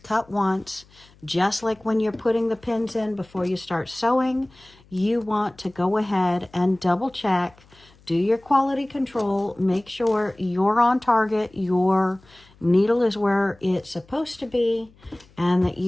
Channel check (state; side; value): noise; left; hum, 28 dB below the sound